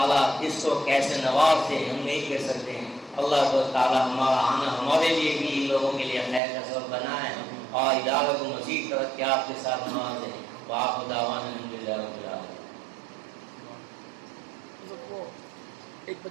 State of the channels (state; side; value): drops out; left; at 6.4 s